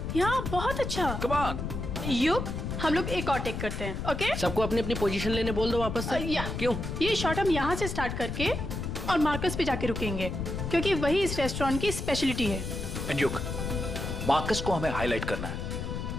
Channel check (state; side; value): noise; left; rumble, 4 dB below the sound